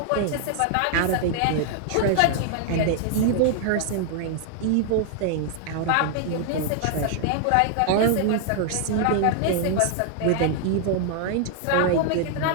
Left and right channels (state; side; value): different; both; correlation 0.00